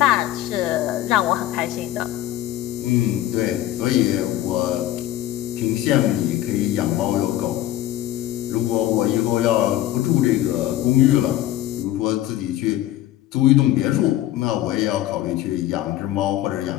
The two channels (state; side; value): quieter; right; 13.7 dB